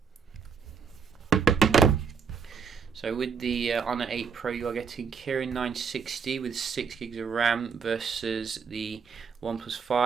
So with the Honor 8 Pro, you are getting Kirin 960 with 6 gigs of RAM versus the OnePlus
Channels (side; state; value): left; quieter; 6.2 dB